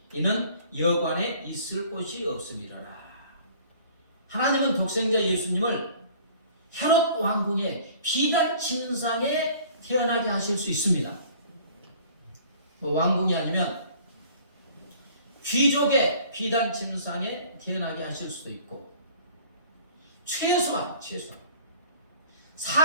이는 여관에 있을 곳이 없음이로라. 하나님은 독생자 예수님을 헤롯 왕궁의 비단 침상에 태어나게 하실 수 있습니다. 왕궁이 아니면 귀족의 비단 침상에 태어나게 하실 수도 있고, 최소한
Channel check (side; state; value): both; inverted; correlation -0.50